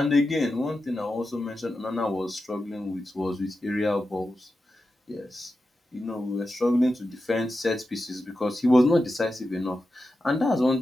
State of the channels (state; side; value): normal; both; correlation 0.91